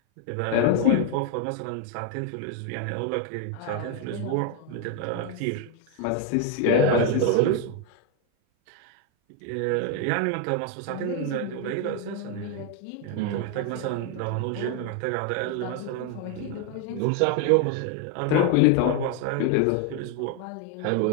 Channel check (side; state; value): both; different; correlation 0.01